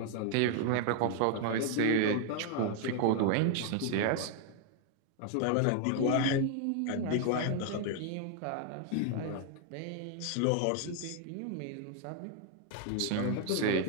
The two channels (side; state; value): both; different; correlation 0.00